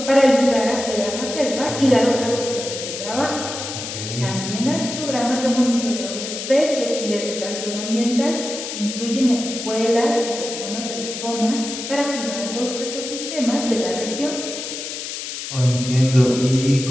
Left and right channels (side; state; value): left; noise; hiss, 7 dB below the sound